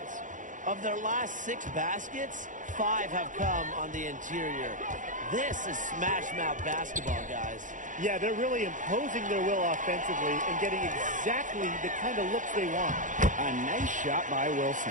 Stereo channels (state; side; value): late; left; 0.37 ms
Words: Of their last 6 baskets, 5 have come on the interior. This is smash-mouth basketball, guys. Yeah, they're really imposing their will offensively and getting exactly the kind of looks they want. A nice shot by